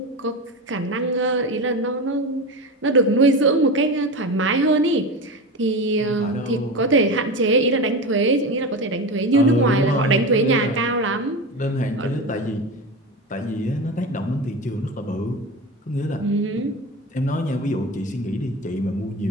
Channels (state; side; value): normal; both; correlation 0.24